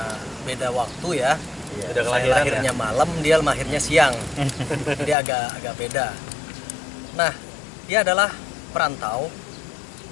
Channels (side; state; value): right; drops out; at 5.2 s